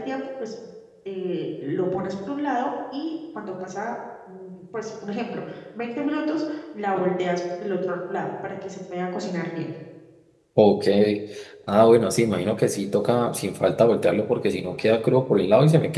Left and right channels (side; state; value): both; identical; correlation 1.00